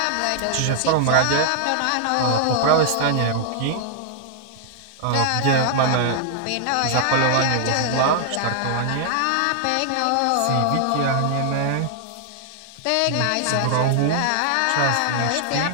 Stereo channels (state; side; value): different; both; correlation -0.01